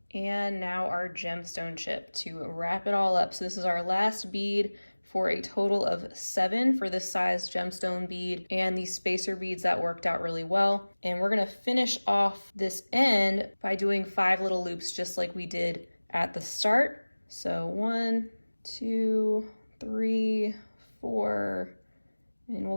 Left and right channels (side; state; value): both; inverted; correlation -1.00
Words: And now our gemstone chip to wrap it all up. So this is our last bead for a total of 7 for this size gemstone bead, and these spacer beads that worked out really well. And we're gonna finish off this end by doing 5 little loops just like we did at the start. So 1, 2, 3, 4, and